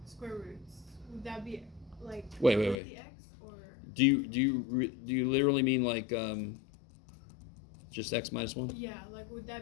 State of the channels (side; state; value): right; drops out; at 2.8 s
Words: square roots? Would that be like Wait. the x or? Do you literally mean like just x minus 1? Yeah, like would